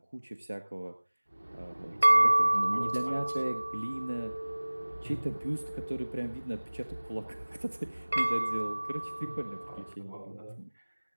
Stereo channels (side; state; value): both; inverted; correlation -1.00